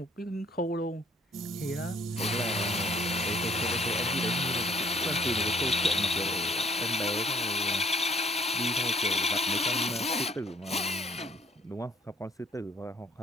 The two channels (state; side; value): normal; both; correlation 0.61